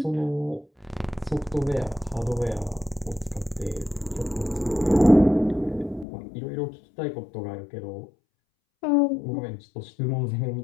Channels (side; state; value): right; drops out; at 6.1 s